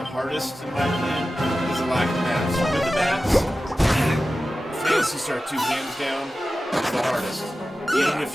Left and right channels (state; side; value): normal; both; correlation 0.94